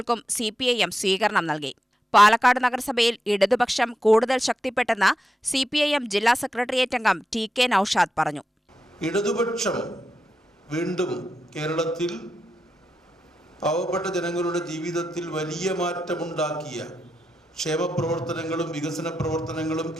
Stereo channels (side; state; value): both; normal; correlation 0.88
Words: CPIM സ്വീകരണം നൽകി. പാലക്കാട് നഗരസഭയിൽ ഇടതുപക്ഷം കൂടുതൽ ശക്തിപ്പെട്ടെന്ന് CPIM ജില്ലാ സെക്രട്ടേറിയറ്റ് അംഗം TK നൌഷാദ് പറഞ്ഞു. ഇടതുപക്ഷം വീണ്ടും കേരളത്തിൽ പാവപ്പെട്ട ജനങ്ങളുടെ ജീവിതത്തിൽ വലിയ മാറ്റമുണ്ടാക്കിയ ക്ഷേമപ്രവർത്തനങ്ങളും വികസന പ്രവർത്തനങ്ങളും